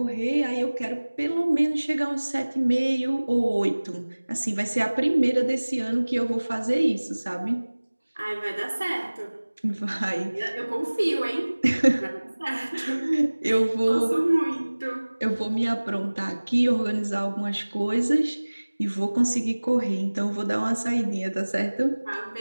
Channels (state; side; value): inverted; both; correlation -1.00